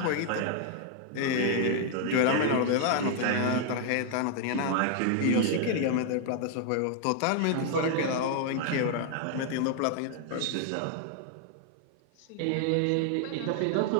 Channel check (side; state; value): both; different; correlation 0.00